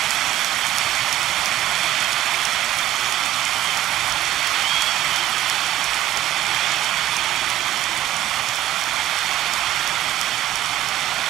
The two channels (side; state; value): left; quieter; 13.6 dB